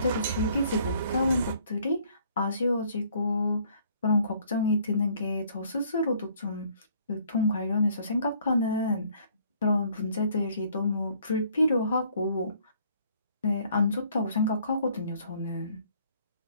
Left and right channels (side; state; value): both; inverted; correlation -0.61